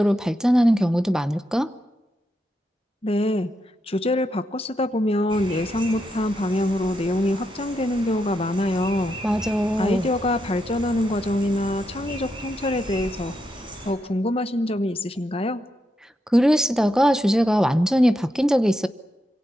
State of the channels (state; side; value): normal; both; correlation 0.83